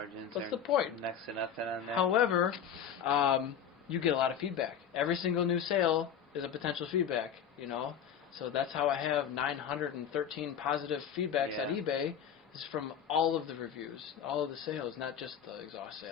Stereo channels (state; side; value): quieter; right; 8.2 dB